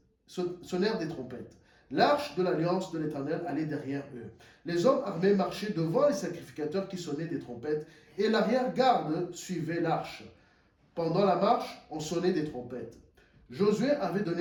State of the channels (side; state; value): both; identical; correlation 1.00